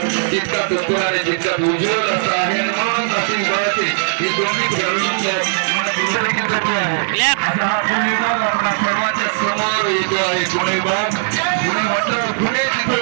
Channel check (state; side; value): silent; left; digital silence